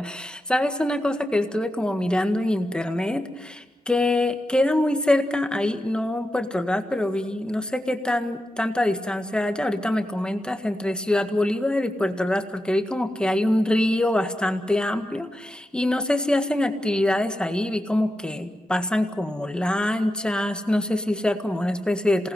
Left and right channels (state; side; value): normal; both; correlation 0.89